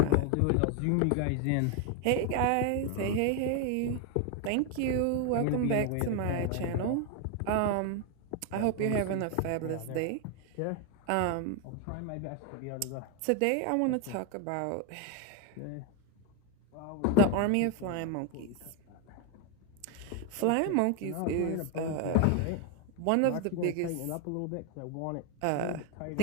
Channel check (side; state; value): both; different; correlation 0.01